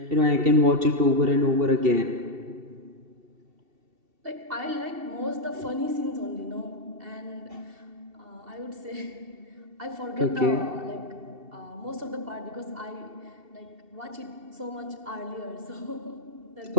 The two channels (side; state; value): left; late; 2.7 ms